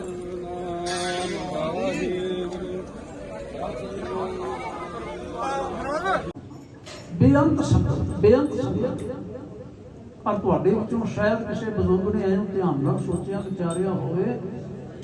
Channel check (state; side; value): identical; both; correlation 1.00